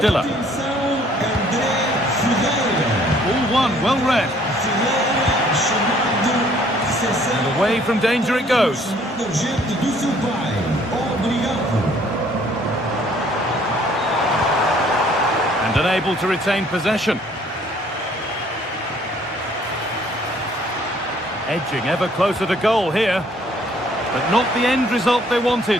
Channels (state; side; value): normal; both; correlation 0.60